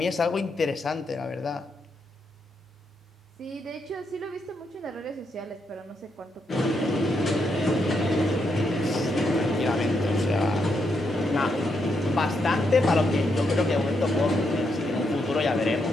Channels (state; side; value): normal; both; correlation 0.80